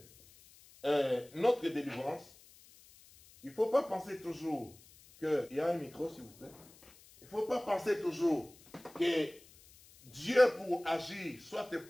notre délivrance, il ne faut pas penser toujours qu'il y a un micro, s'il vous plaît. Il ne faut pas penser toujours que Dieu, pour agir, soit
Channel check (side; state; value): left; noise; hiss, 24 dB below the sound